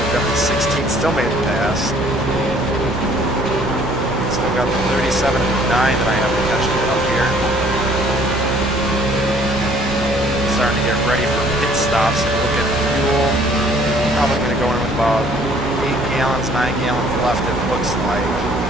up to 16th, still made it past. Still got the 37 and 9 that I have to catch up here. Starting to get ready for pit stops and look at fuel. Probably going to go in with about 8 gallons, 9 gallons left, it looks like.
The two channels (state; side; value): normal; both; correlation 0.58